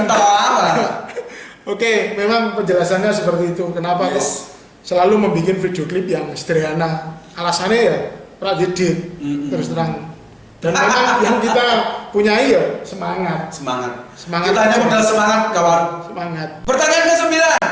apa? Oke, memang penjelasannya seperti itu. Kenapa kok selalu membuat video klip yang sederhana? Alasannya ya pradedit terus terang. Dan memang yang kita punyai ya semangat. Kita hanya modal semangat, kawan. Semangat. Pertanyaan ke-9.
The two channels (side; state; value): both; identical; correlation 1.00